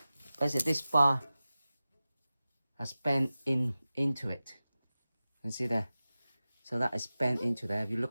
basically this bar has bent into it. You can see there, so that is bent into there. If you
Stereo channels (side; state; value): both; inverted; correlation -0.96